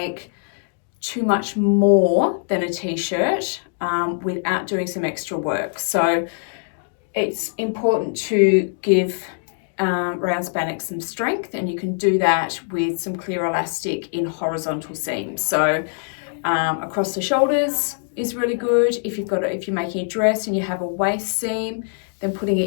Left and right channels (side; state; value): right; silent; digital silence